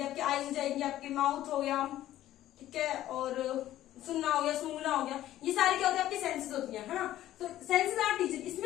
आपकी, आईज हो जाएगी आपकी, माउथ हो गया, ठीक है, और सुनना हो गया, सूंघना हो गया, ये सारी क्या होती है आपकी सेंसेस होती है ना। तो सेंसेस आर टीचर,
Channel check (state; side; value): quieter; right; 13.6 dB